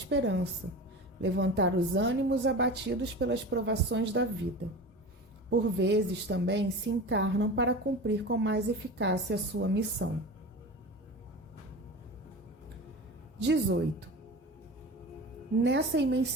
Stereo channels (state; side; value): normal; both; correlation 0.32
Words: levantar os ânimos abatidos pelas provações da vida. Por vezes também se encarnam para cumprir com mais eficácia a sua missão. 18. Nessa